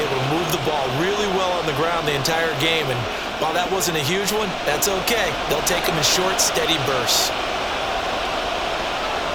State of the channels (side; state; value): both; identical; correlation 1.00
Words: able to move the ball really well on the ground the entire game. And while that wasn't a huge one, that's okay. They'll take them in short, steady bursts.